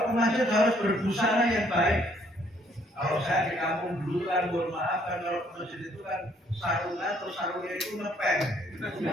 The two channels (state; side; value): normal; both; correlation 0.65